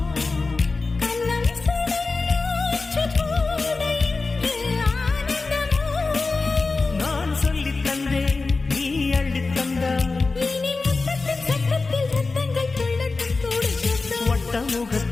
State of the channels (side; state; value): right; quieter; 3.8 dB